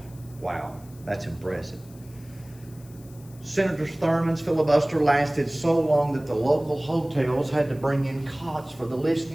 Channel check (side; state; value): left; noise; hiss, 25 dB below the sound